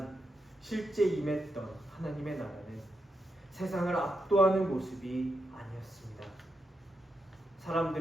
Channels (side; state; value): both; normal; correlation 0.84